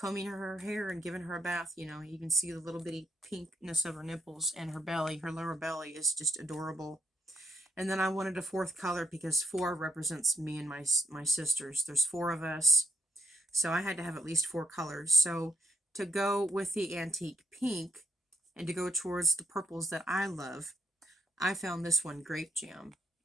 her hair and giving her a bath, you know, you can see the little bitty pinkness of her nipples, and her belly. Her lower belly is just adorable. And then I wanted a 4th color because 4 represents me and my sisters. There's 4 of us. So I had to have at least 4 colors. So to go with the antique pink and to go towards the purples that I love, I found this one, Grape Jam.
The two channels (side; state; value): both; normal; correlation 0.77